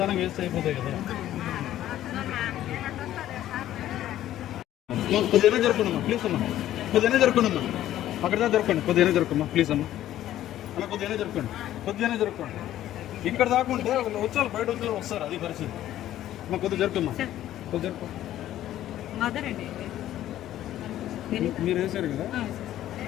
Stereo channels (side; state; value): right; quieter; 12.9 dB